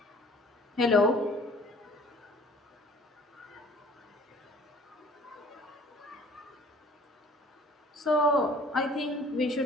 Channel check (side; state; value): both; normal; correlation 0.52